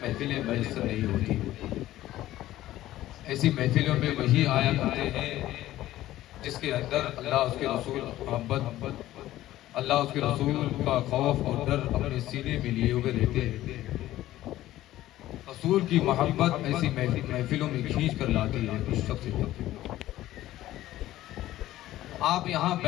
محفلیں میسر نہیں ہوتی۔ ایسی محفلوں میں وہی آیا کرتے ہیں جس کے اندر اللہ اس کے رسول محبت، اللہ اس کے رسول کا خوف اور ڈر اپنے سینے میں لیے ہوئے رہتے ہیں۔ رسول کی محبت ایسی محفلوں میں کھینچ کر لاتی ہے اس شخص کو۔ آپ یہاں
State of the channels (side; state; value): right; quieter; 14.7 dB